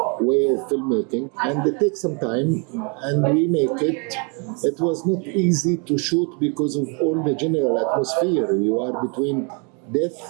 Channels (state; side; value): quieter; left; 35.4 dB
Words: way of filmmaking, and it takes some time, and we make it. It was not easy to shoot because of all the general atmosphere. You are between